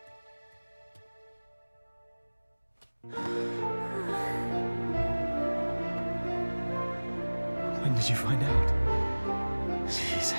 When did you find out? Jeez,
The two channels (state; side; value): inverted; both; correlation -1.00